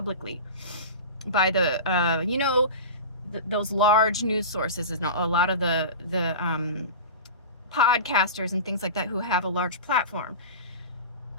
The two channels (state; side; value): inverted; both; correlation -0.30